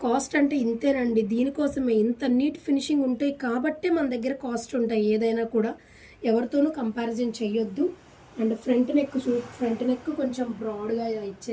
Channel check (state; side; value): identical; both; correlation 1.00